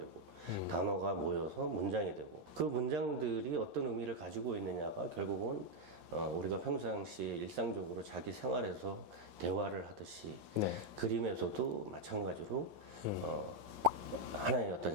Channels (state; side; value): late; left; 11 ms